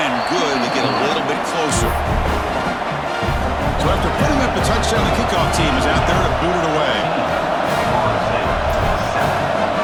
good to get a little bit closer. So after putting up the touchdown, the kickoff team is out there to boot it away.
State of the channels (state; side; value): identical; both; correlation 1.00